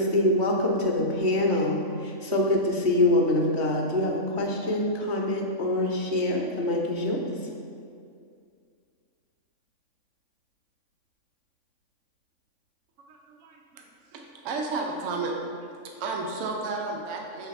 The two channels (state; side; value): late; left; 3.5 ms